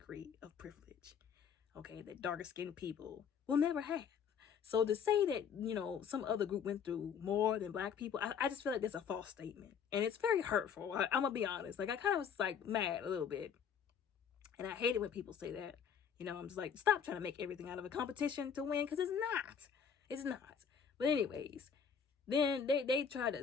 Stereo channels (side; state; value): right; quieter; 7.2 dB